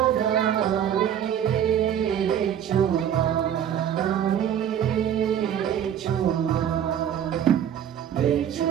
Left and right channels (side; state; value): left; quieter; 9.6 dB